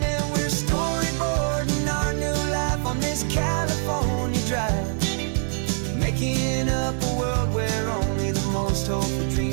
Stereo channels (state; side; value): silent; left; 62 dB below the other